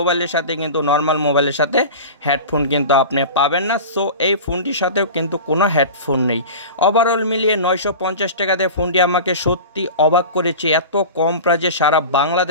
সাথে কিন্তু নর্মাল মোবাইলের সাথে হেডফোন কিন্তু আপনি পাবেন না। সো এই ফোনটির সাথেও কিন্তু কোনো হেডফোন নেই। ওভারঅল মিলিয়ে 950 টাকাতে ফোনটি আমাকে সত্যি অবাক করেছে। এত কম প্রাইজে সারা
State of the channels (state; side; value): inverted; both; correlation -0.32